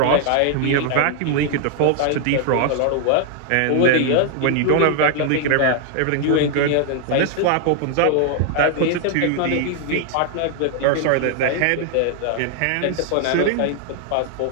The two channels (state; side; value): different; both; correlation 0.00